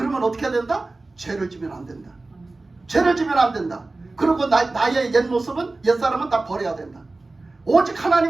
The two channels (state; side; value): quieter; left; 3.2 dB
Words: 어떻게 해야 된다? 죄를 지면 안 된다. 죄를 지면 안 된다. 그리고 나의 옛 모습은, 옛사람은 다 버려야 된다. 오직